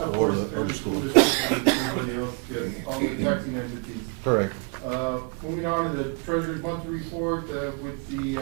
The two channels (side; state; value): left; quieter; 35.2 dB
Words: course, and the school district and everybody else, yes, all the taxing entities. Correct. Moving on to the treasurer's monthly report, with the,